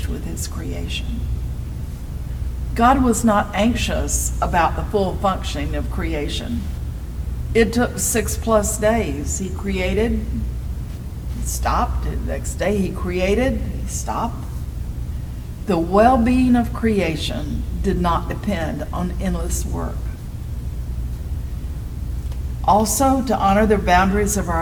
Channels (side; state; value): both; identical; correlation 1.00